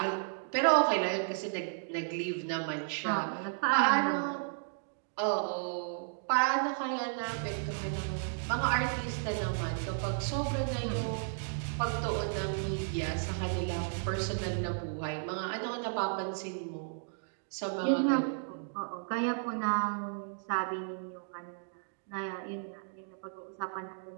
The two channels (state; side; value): silent; left; digital silence